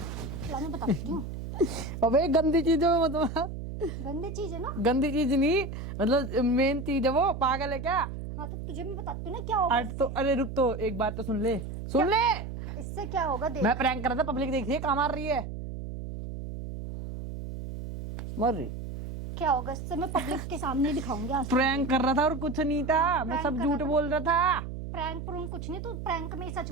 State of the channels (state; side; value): noise; right; hum, 7 dB below the sound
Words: मैं बताती हूँ। अबे गंदी चीजों में मतलब गंदी चीज है ना? गंदी चीज नहीं, मतलब मेन चीज है वो। पागल है क्या? हाँ तो तुझे मैं बताती हूँ ना क्या होगा तो अरे रुक, तो एक बात तो सुन ले। इससे क्या होगा देख। मैं प्रैंक कर रहा था, पब्लिक देख रही है, कहाँ मार रही है? मर रही। क्या होगा इससे मैं पब्लिक के सामने दिखाऊंगी आज। प्रैंक कर रहा था और कुछ नहीं था, मैं सब झूठ बोल रहा था। प्रैंक कुछ नहीं, तू प्रैंक में ही सच